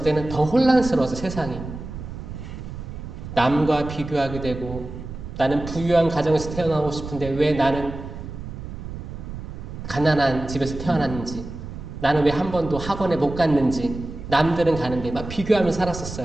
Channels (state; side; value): noise; right; rumble, 10 dB below the sound